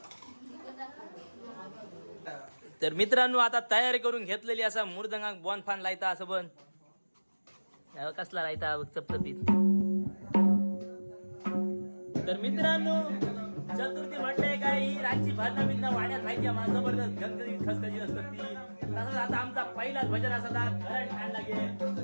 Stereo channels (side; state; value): both; inverted; correlation -1.00